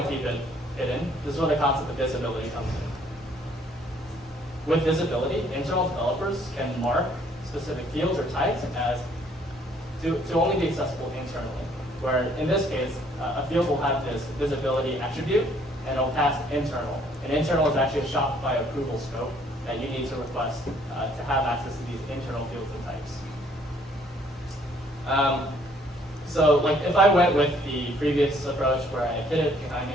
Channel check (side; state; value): both; normal; correlation 0.63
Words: to keep it hidden, this is where the concept of visibility comes in. With visibility, internal developers can mark specific fields or types as to only be accessible internally. Where in this case, a field will have this visibility attribute, and it'll pass internal. And internal is actually a Shopify approval scope that you need to request to have access to these internal fields and types. So like if I went with the previous approach where I hid it behind